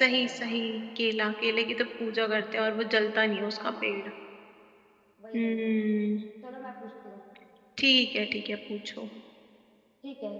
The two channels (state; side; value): identical; both; correlation 1.00